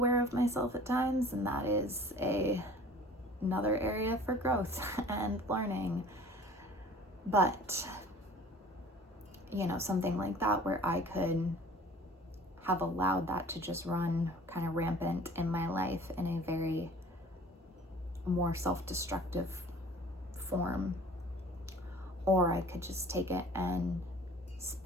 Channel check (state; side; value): normal; both; correlation 0.47